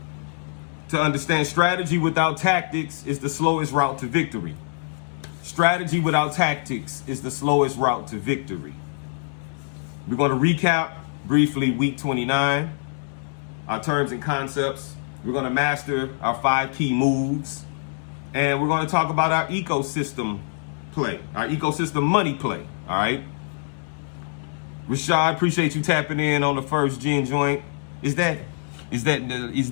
to understand strategy without tactics is the slowest route to victory. Strategy without tactics is the slowest route to victory. We're going to recap briefly week 29, our terms and concepts. We're going to master our 5 key moves. And we're going to talk about our ecosystem play, our ecosystem money play. All right. Rashad, appreciate you tapping in on the First Gen joint. Is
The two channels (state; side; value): silent; right; 62 dB below the other